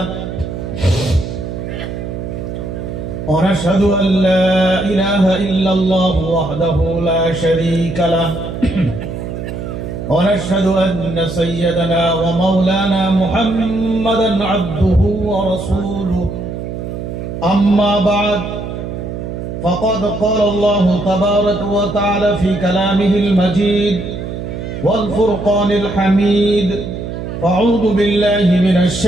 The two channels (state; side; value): noise; right; hum, 7 dB below the sound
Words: ونشهد أن لا إله إلا الله وحده لا شريك له ونشهد أن سيدنا ومولانا محمدا عبده ورسوله أما بعد فقد قال الله تبارك وتعالى في كلامه المجيد والفرقان الحميد فأعوذ بالله من